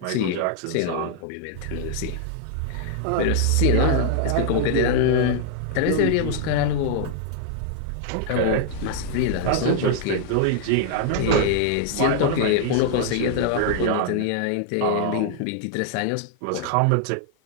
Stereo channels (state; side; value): different; both; correlation 0.00